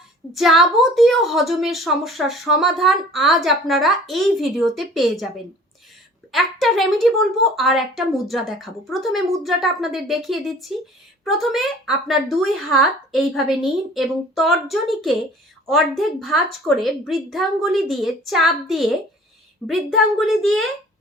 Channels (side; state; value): both; normal; correlation 0.48